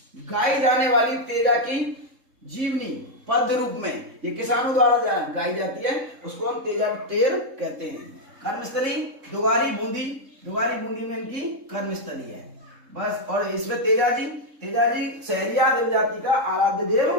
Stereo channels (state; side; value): late; left; 3.7 ms